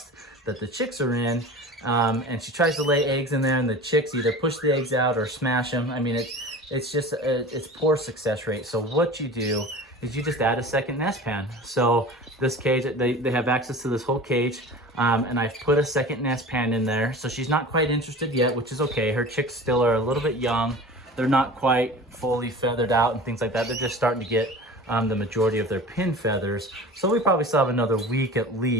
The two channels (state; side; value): normal; both; correlation 0.37